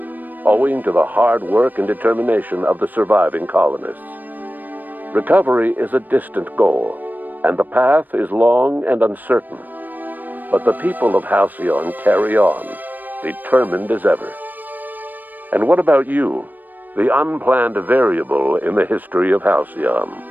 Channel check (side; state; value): left; late; 0.087 ms